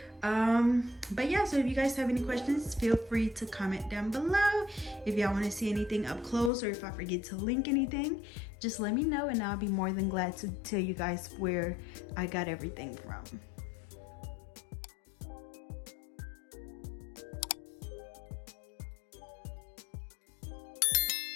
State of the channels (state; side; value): drops out; right; at 6.5 s